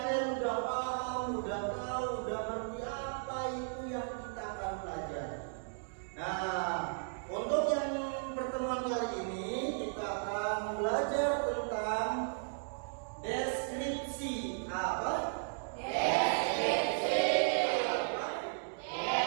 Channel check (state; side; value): silent; left; digital silence